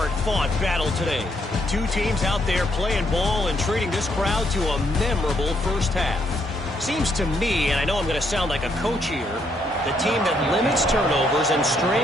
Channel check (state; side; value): normal; both; correlation 0.73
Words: battle today. 2 teams out there playing ball and treating this crowd to a memorable first half. Seems to me, and I know I'm going to sound like a coach here, the team that limits turnovers and